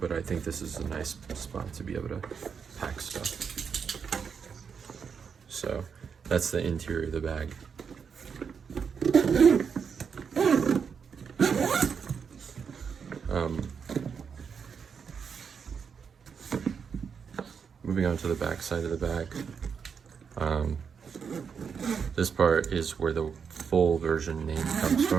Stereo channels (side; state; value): left; quieter; 6.4 dB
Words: I think this is a nice spot to be able to pack stuff. So that's the interior of the bag. Moving on to the back side of the bag. This part is where the full version name comes